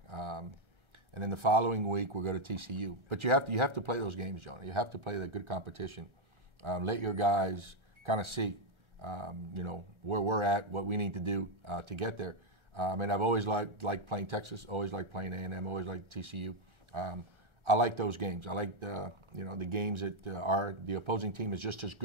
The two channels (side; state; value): left; late; 1.3 ms